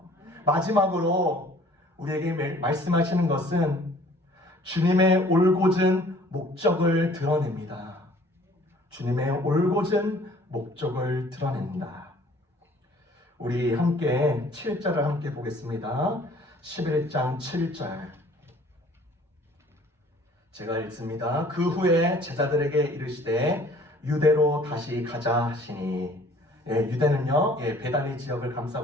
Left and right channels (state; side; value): normal; both; correlation 0.54